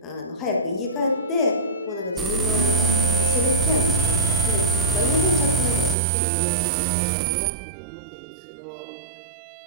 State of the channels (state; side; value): drops out; left; at 6.0 s